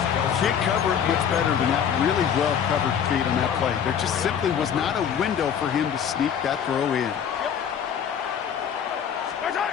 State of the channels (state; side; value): quieter; right; 8.2 dB